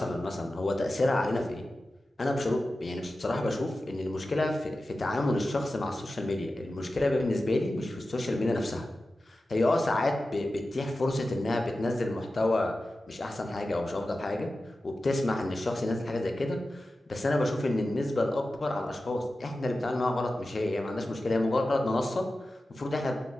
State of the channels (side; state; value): both; normal; correlation 0.94